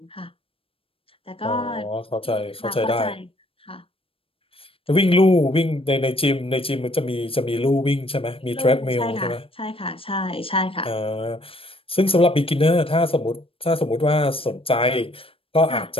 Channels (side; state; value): right; late; 0.27 ms